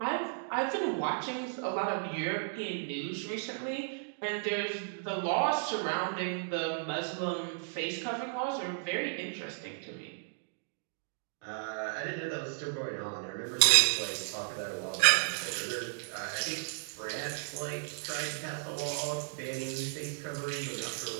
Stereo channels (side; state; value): left; silent; digital silence